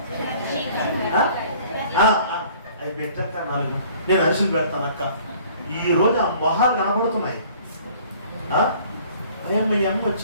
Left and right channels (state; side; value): inverted; both; correlation -0.53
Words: అవి పెట్టాక 4 నేను అరిసెలు పెడతాను అక్క. ఈరోజు ఆ మొహాలు కనబడుతున్నాయి. అమ్మ